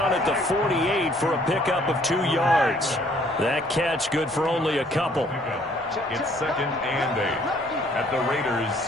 at the 48 for a pickup of 2 yards. That catch good for only a couple. It's 2nd and 8 at the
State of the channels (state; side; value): normal; both; correlation 0.61